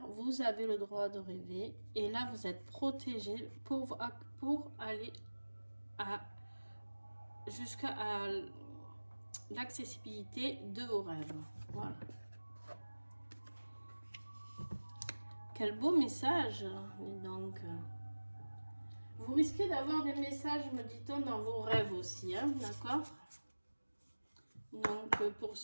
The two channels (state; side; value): inverted; both; correlation -1.00